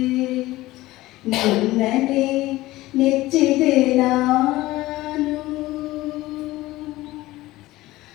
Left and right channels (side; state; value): right; quieter; 17.8 dB